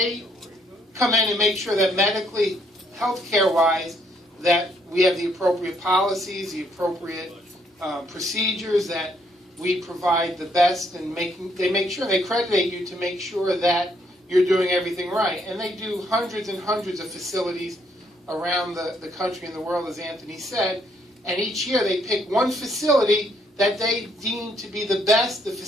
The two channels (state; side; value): normal; both; correlation 0.70